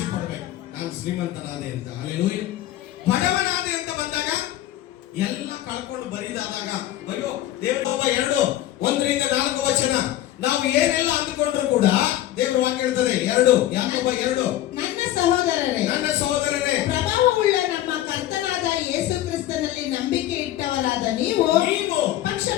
ಪಡ್ಬೇಕು. ನಾನು ಶ್ರೀಮಂತನಾದೆ ಅಂತ. ಹಲ್ಲೆಲೂಯ. ಬಡವನಾದೆ ಅಂತ ಬಂದಾಗ ಎಲ್ಲ ಕಳ್ಕೊಂಡು ಬರಿದಾದಾಗ ಅಯ್ಯೋ ದೇವರ 2:1-4 ವಚನ ನಾವು ಏನೆಲ್ಲ ಅಂದುಕೊಂಡ್ರು ಕೂಡ ದೇವರ ವಾಕ್ಯ ಹೇಳ್ತದೆ 2 ಯಾಕೋಬ 2 ನನ್ನ ಸಹೋದರರೇ ಪ್ರಭಾವವುಳ್ಳ ನಮ್ಮ ಕರ್ತನಾದ ಯೇಸು ಕ್ರಿಸ್ತನಲ್ಲಿ ನಂಬಿಕೆ ಇಟ್ಟವರಾದ ನೀವು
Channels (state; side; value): quieter; right; 13.7 dB